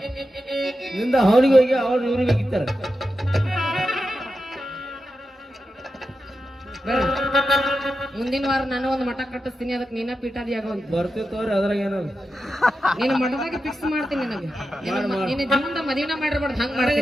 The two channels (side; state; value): both; normal; correlation 0.90